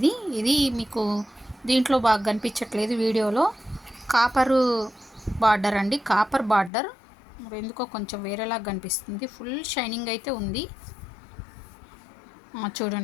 మీకు దీంట్లో బాగా కనిపించట్లేదు వీడియోలో. కాపరు బార్డర్ అండి, కాపర్ బార్డర్. మరి ఎందుకో కొంచెం వేరేలాగా కనిపిస్తుంది. ఫుల్ షైనింగ్ అయితే ఉంది.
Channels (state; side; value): drops out; right; at 6.7 s